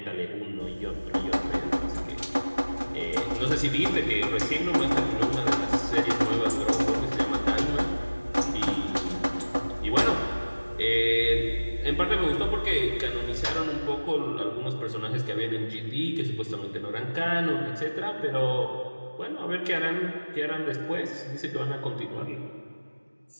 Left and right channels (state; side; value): inverted; both; correlation -1.00